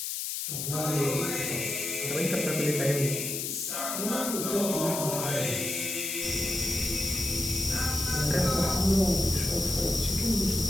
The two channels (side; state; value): left; noise; hiss, 3 dB below the sound